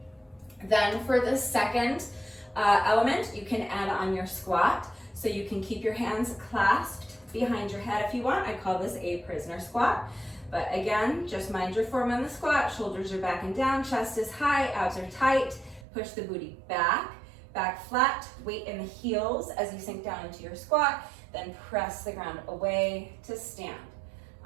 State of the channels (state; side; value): drops out; left; at 15.9 s